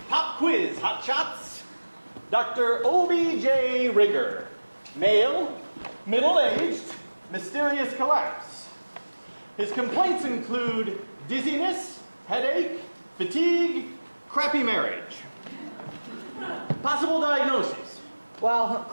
pop quiz, hot shots. Dr. O.B.J. Rigger, male, middle-aged, mysterious collapse. His complaints include dizziness, headache, fatigue, crappy marriage. Possible diagnosis. Well,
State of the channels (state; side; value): inverted; both; correlation -1.00